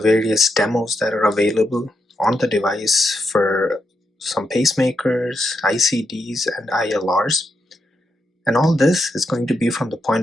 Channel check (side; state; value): both; normal; correlation 0.82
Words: demos that are available on the device for some pacemakers, ICDs, and ILRs. And all this is going to be from the